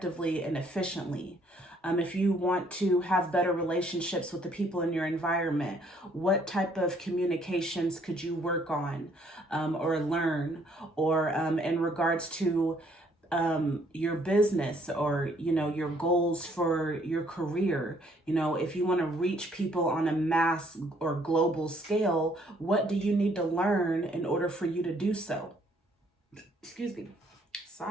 and efficiently? If you want to have better relationships with the people in your environment, what type of communications could you work on or learn? Or in regards to your business or, your goals for your career, if you want to reach people on a mass or global scale, what do you need to learn in order for you to do so? Excuse me.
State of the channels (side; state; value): both; normal; correlation 0.65